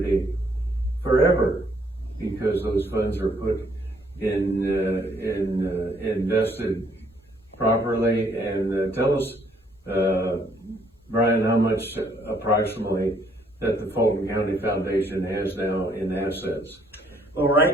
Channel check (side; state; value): both; normal; correlation 0.67